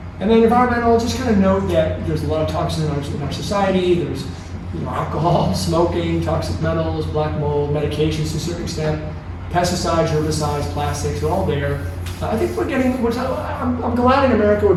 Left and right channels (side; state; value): both; identical; correlation 1.00